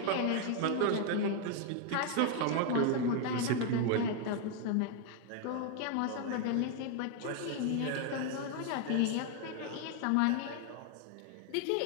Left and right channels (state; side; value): different; both; correlation 0.00